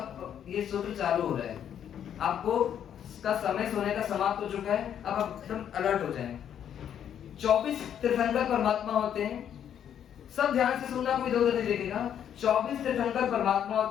ये सूत्र चालू हो रहा है। आपको का समय सोने का समाप्त हो चुका है, अब आप एकदम अलर्ट हो जाएं। 24 तीर्थंकर परमात्मा होते हैं। सब ध्यान से सुनना, कोई इधर-उधर नहीं देखेगा। 24 तीर्थंकर परमात्मा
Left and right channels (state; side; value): quieter; right; 9.3 dB